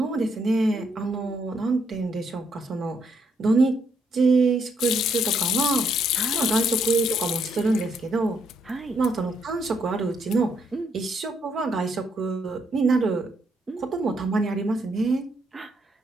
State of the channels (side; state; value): both; normal; correlation 0.74